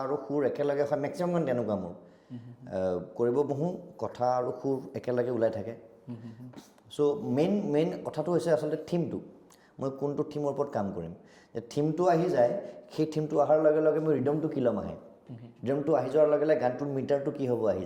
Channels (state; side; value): identical; both; correlation 1.00